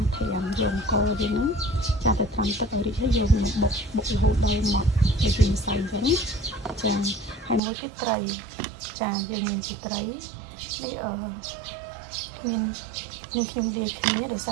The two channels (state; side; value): drops out; left; at 7.6 s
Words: រត្រាំយកអង្គយើងហ្នឹងចាទៅត្រាំទឹកឲ្យរីកហើយយកមកបុករហូតដល់ម៉ត់ទៅជាម្សៅអញ្ចឹងចាហើយមួយទៀតត្រីចាយើងមានជាត្រីនេះមានខ្ញុំនិយាយគ្នាដោយស